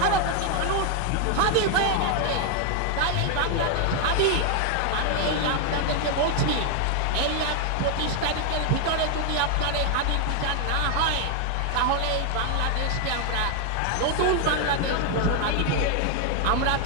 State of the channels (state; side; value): different; both; correlation 0.01